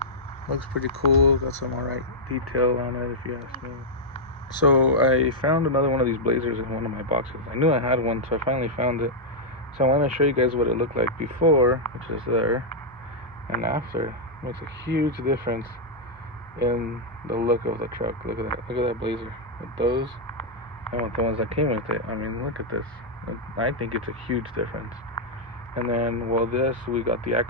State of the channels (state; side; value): normal; both; correlation -0.06